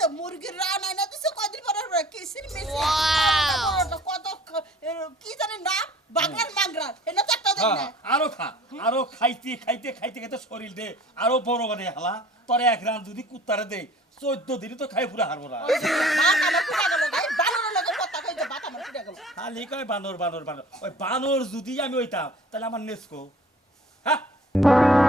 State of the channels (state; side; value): normal; both; correlation 0.49